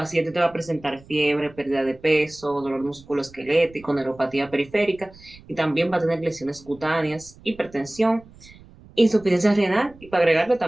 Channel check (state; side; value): noise; right; rumble, 23 dB below the sound